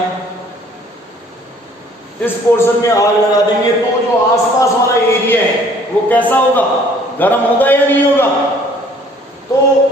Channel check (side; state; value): both; normal; correlation 0.57